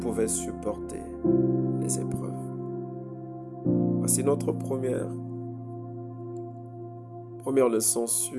supporter les épreuves. Voici notre première leçon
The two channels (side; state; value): both; identical; correlation 1.00